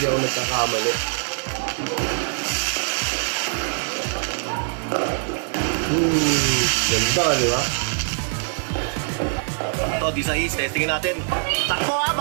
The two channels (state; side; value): silent; left; digital silence